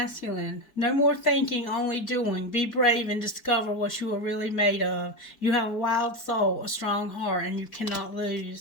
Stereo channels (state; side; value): late; right; 4.6 ms